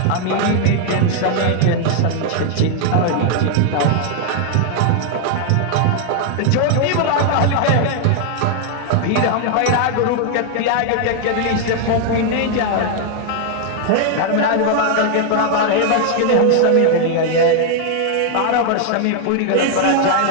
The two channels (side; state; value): both; different; correlation 0.00